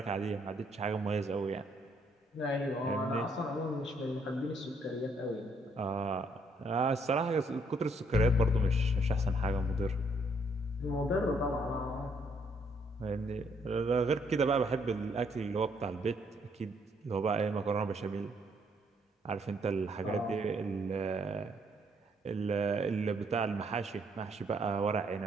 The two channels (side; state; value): both; normal; correlation 0.69